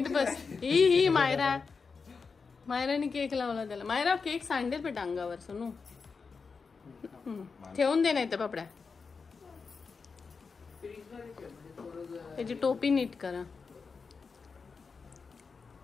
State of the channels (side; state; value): right; quieter; 5.0 dB